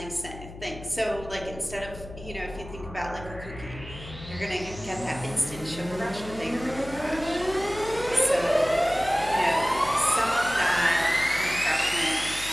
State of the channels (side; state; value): left; noise; hum, 14 dB below the sound